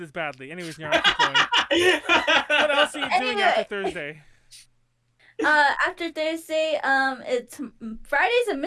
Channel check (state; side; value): identical; both; correlation 1.00